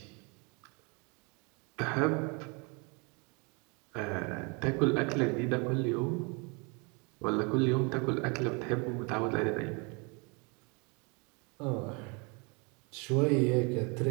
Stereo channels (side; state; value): left; quieter; 31.7 dB